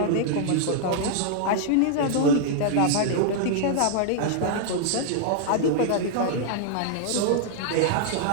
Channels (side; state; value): both; different; correlation -0.01